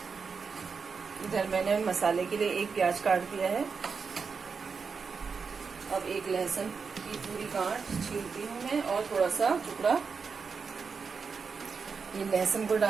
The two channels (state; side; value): quieter; left; 5.4 dB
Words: इधर मैंने मसाले के लिए एक प्याज काट दिया है। अब एक लहसुन की पूरी गांठ छीलती हूँ मैं और थोड़ा सा टुकड़ा ये लहसुन को